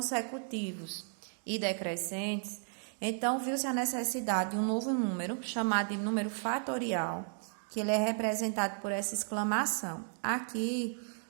e decrescentes, então viu-se a necessidade de um novo número, chamado de número fatorial, que ele é representado por essa exclamação. Aqui,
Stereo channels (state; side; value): silent; left; 55 dB below the other